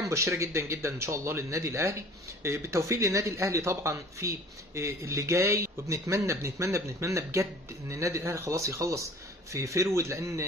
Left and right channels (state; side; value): normal; both; correlation 0.47